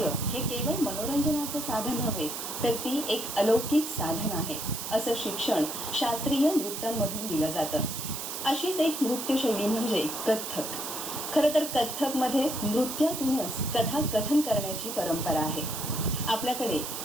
हे केवळ मनोरंजनाचं साधन नव्हे, तर ती एक अलौकिक साधन आहे असं शिक्षण शास्त्रीय नृत्यांमधून दिलं जातं. अशीच एक नृत्यशैली म्हणजे कथ्थक. खरं तर कथ्थकमध्ये नृत्यातूनच कथाकथन करण्याची परंपरा आहे. आपल्याकडे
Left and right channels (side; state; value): right; noise; hiss, 6 dB below the sound